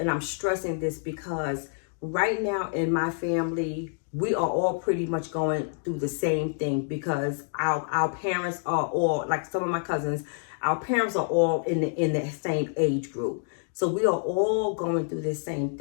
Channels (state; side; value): silent; right; 60 dB below the other